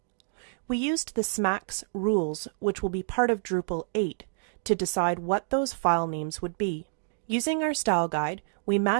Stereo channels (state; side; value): silent; left; digital silence